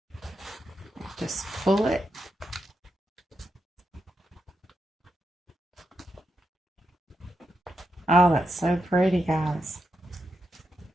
Just pull it. Oh, that's so pretty, guys.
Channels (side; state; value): both; normal; correlation 0.84